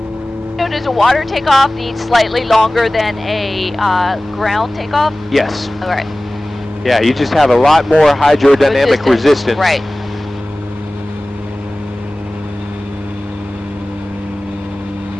So does a water takeoff need slightly longer than a ground takeoff? Yes. All right. Yeah, you just have a lot more hydrodynamic resistance. Right.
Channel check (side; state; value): both; normal; correlation 0.98